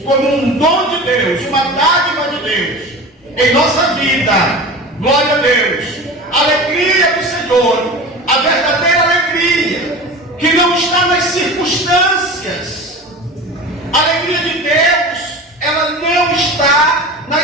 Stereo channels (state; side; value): normal; both; correlation 0.33